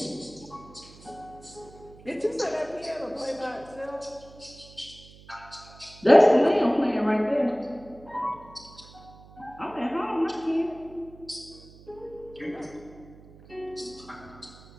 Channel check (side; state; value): right; noise; hum, 21 dB below the sound